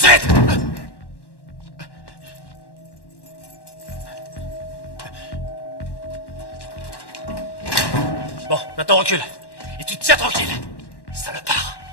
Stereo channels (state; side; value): late; right; 1.1 ms